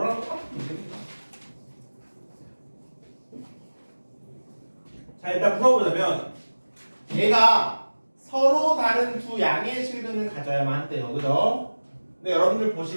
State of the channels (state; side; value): inverted; both; correlation -1.00